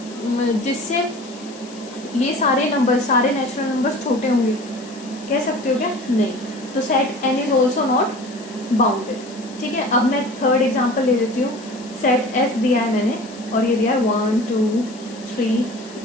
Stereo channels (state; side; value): noise; left; hiss, 20 dB below the sound